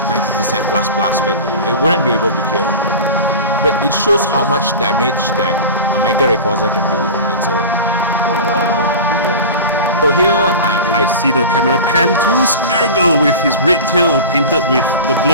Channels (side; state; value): both; inverted; correlation -0.31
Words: plus, but it wouldn't be able to kill. But it shows how much damage that a Mega Rayquaza can do on its own. So here, I see the camera pan to Smeargle with his red tail painted with the